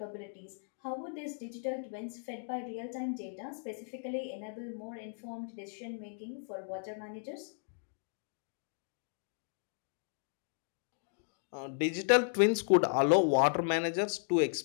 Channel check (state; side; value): silent; right; digital silence